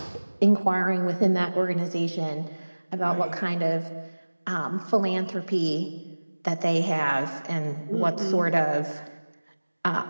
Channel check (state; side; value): inverted; both; correlation -1.00